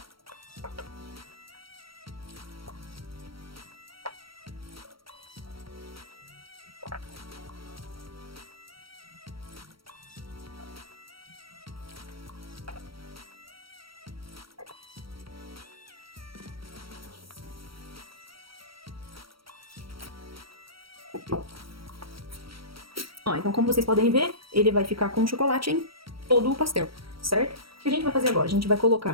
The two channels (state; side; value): late; left; 0.75 ms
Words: Ó, então como vocês podem ver, ele vai ficar com chocolate em todo o pastel, certo? O que a gente vai fazer agora? A gente vai